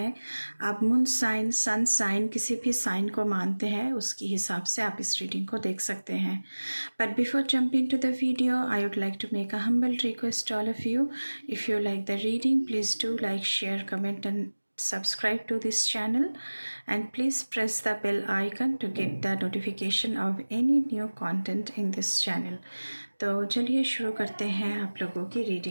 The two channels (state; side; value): inverted; both; correlation -1.00